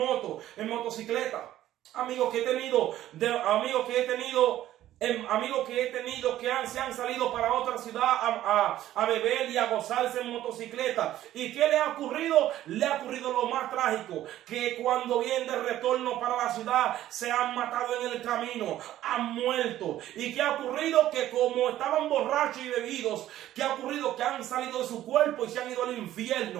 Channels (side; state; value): left; quieter; 13.3 dB